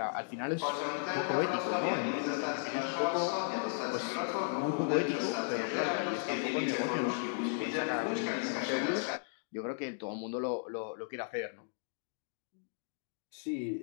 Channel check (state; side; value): silent; right; digital silence